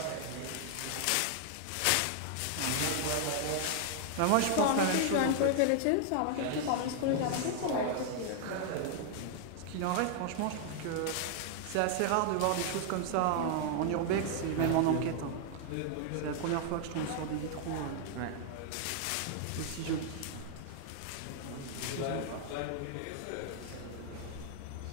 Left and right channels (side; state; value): both; different; correlation 0.00